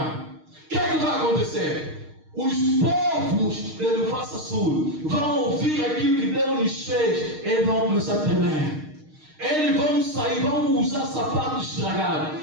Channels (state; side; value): late; left; 6.5 ms